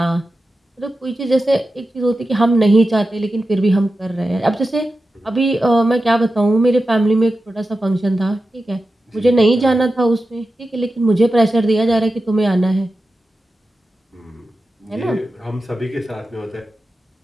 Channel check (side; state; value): both; normal; correlation 0.92